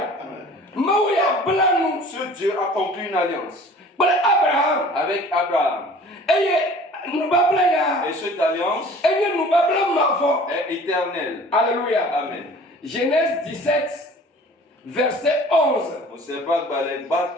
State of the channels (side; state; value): both; normal; correlation 0.47